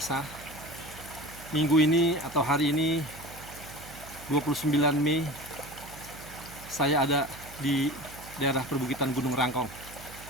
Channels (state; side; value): noise; right; hum, 16 dB below the sound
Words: Minggu ini atau hari ini 29 Mei saya ada di daerah perbukitan Gunung Rangkong.